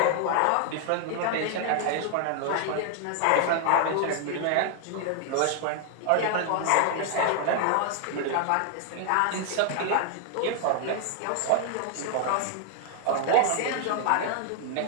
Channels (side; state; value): both; different; correlation 0.00